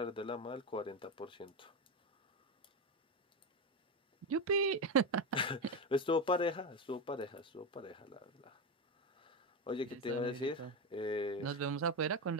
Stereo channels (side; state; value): both; normal; correlation 0.14